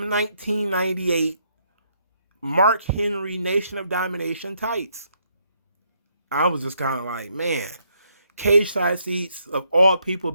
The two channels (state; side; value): inverted; both; correlation -0.73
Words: 1998 Mark Henry Nation of Domination tights. I was just kind of like, man, Cage Side Seats of all people